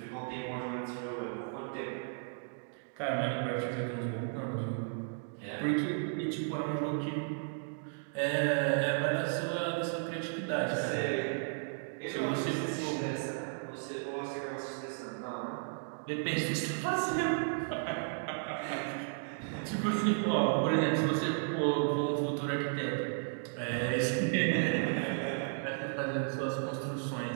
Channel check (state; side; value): silent; left; digital silence